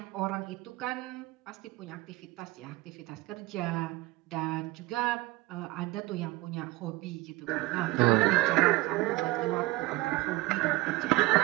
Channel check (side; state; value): left; quieter; 19.5 dB